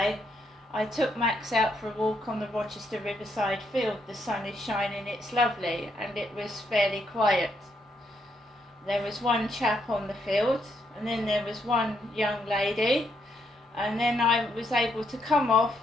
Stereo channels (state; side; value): normal; both; correlation 0.76